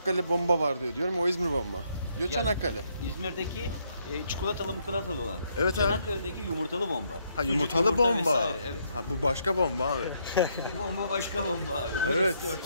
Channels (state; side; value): inverted; both; correlation -0.73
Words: bomba var diyorum. O İzmir bomba. Diyor ya, Çanakkale. İzmir'deki çikolatalı olan. Evet Çanakkale'deki yumurtalı bomba. Ha yumurtalı bomba. Vesaire, evet. Ha bu başka bomba abi. Bu bomba başka bomba abi. Evet.